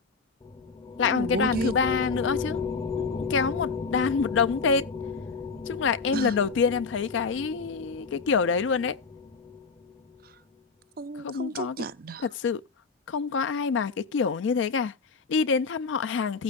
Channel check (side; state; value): right; quieter; 4.7 dB